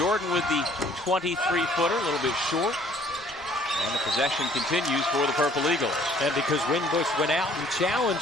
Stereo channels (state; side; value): normal; both; correlation 0.57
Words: with the 23-footer, a little bit short. And the possession continues for the Purple Eagles. And because Winbush went out and